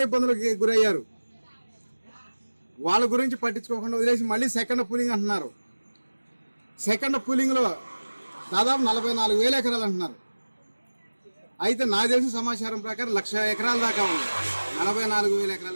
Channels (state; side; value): inverted; both; correlation -1.00